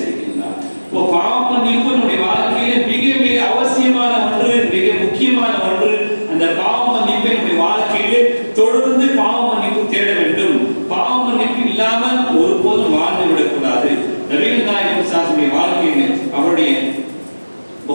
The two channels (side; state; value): both; inverted; correlation -1.00